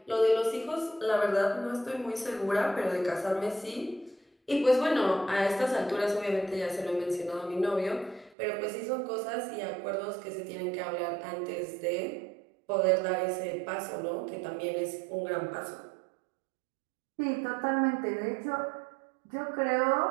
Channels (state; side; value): drops out; left; at 8.3 s